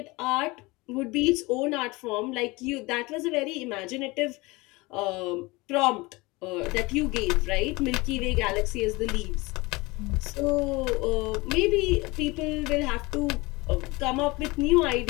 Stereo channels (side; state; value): right; quieter; 23.3 dB